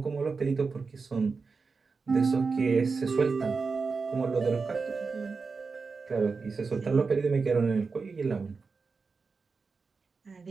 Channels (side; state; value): left; quieter; 4.6 dB